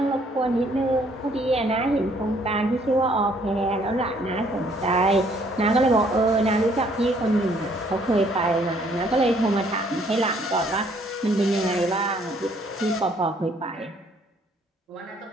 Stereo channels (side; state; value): both; normal; correlation 0.64